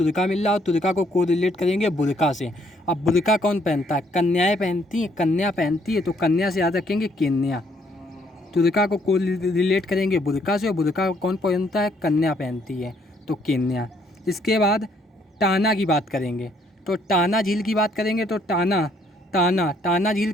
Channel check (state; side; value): normal; both; correlation 0.67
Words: मिल रहा और तुर्का को कोरिलेट करेंगे बुरका से। अब बुरका कौन पहनता है? कन्याएं पहनती हैं, कन्या पहनती है, तो कन्या से याद रखेंगे केन्या। तुर्का को कोरिलेट करेंगे बुरका से और बुरका कौन पहनता है? कन्या पहनती है, तो केन्या। इसके बाद टाना की बात करेंगे, तो टाना झील की बात करेंगे तो टाना झील